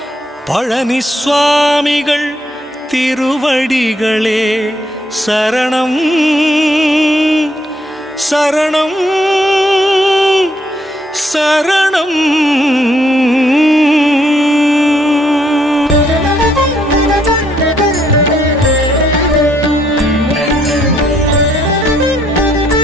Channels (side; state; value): both; normal; correlation 0.71